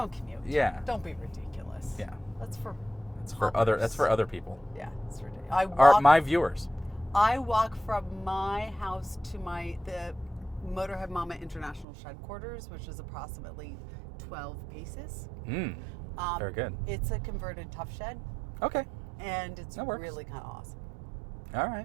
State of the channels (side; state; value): left; drops out; at 11.9 s